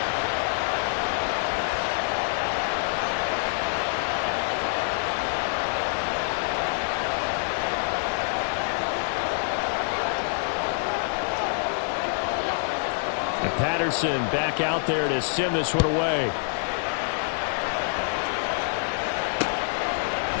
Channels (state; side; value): silent; right; 61 dB below the other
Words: And Patterson back out there to send this one away.